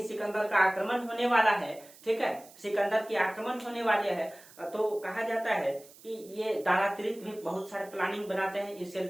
सिकंदर का आक्रमण होने वाला है, ठीक है, सिकंदर की आक्रमण होने वाले है, तो कहा जाता है कि ये दारातिर्त भी बहुत सारे प्लानिंग बनाते हैं इससे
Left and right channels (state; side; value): noise; right; hiss, 22 dB below the sound